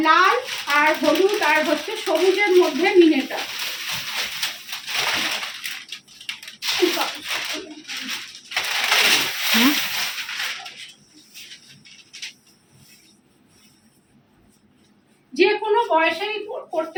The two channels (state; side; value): identical; both; correlation 1.00